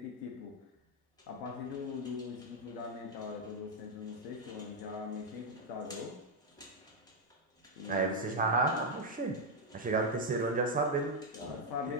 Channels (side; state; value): both; normal; correlation 0.01